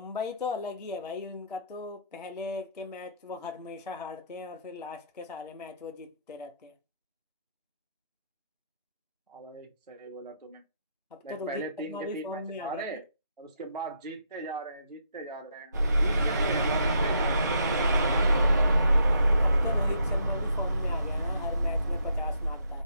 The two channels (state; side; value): inverted; both; correlation -0.73